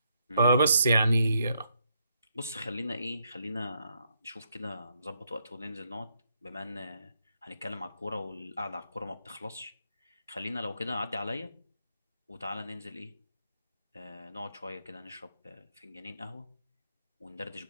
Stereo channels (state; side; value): inverted; both; correlation -0.76